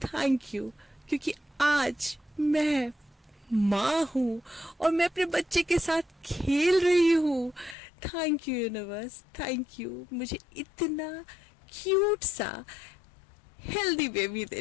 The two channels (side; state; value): right; drops out; at 7.8 s